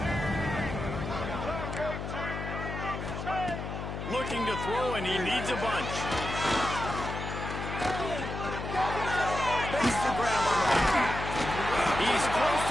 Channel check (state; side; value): noise; left; hum, 6 dB below the sound